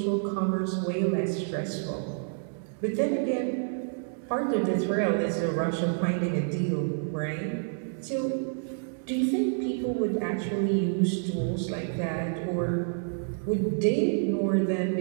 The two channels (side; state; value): left; silent; digital silence